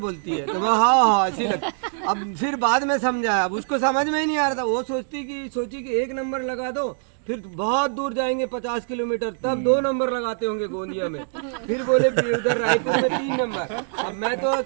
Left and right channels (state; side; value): silent; left; digital silence